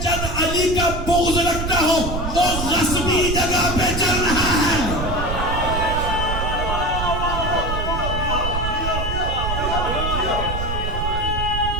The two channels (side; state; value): right; noise; rumble, 3 dB below the sound